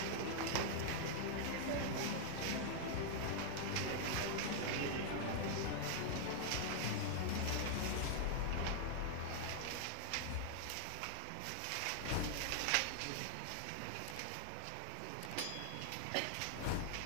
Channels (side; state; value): both; different; correlation 0.00